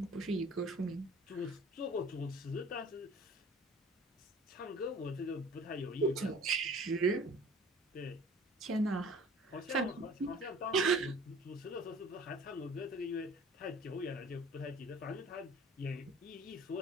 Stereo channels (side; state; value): both; normal; correlation 0.47